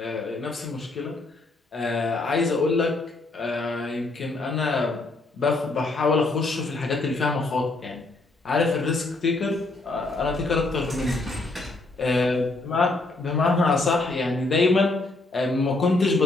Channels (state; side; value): quieter; right; 3.1 dB